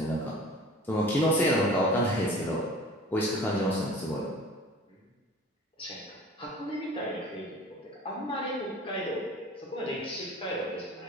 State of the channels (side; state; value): both; normal; correlation 0.43